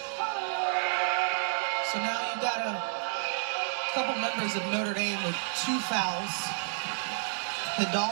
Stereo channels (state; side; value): silent; left; digital silence